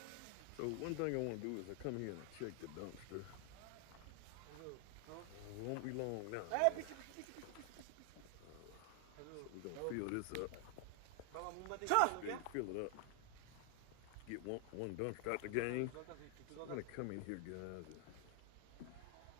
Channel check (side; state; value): both; different; correlation 0.00